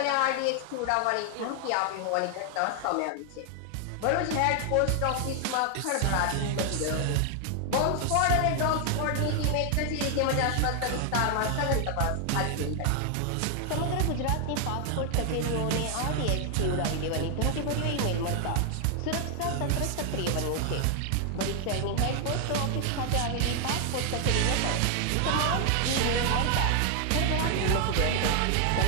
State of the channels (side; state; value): both; different; correlation 0.00